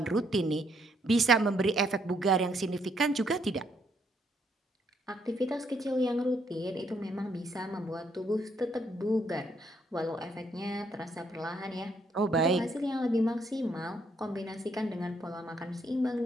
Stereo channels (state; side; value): normal; both; correlation 0.72